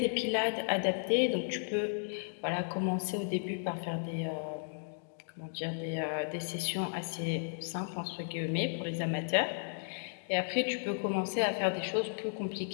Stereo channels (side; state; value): right; silent; digital silence